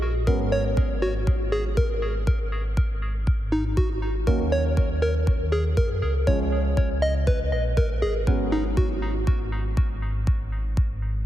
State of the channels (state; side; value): normal; both; correlation 0.89